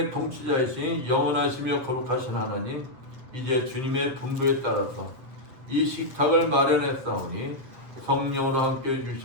통치자이신 영원하시며 거룩하신 하나님, 이제 주님의 분부에 따라서 이 식탁을 마련했사오니 성령으로 함께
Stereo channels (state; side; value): late; left; 8.0 ms